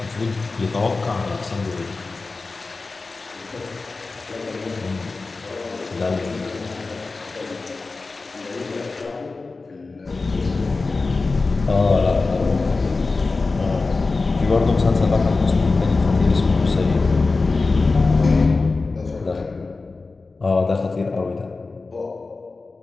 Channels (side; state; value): right; quieter; 3.8 dB